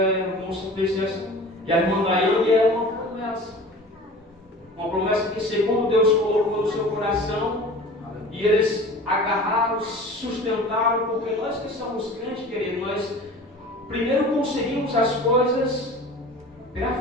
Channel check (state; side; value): normal; both; correlation 0.40